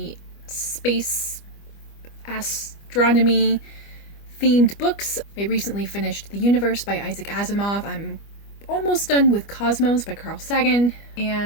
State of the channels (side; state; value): right; late; 25 ms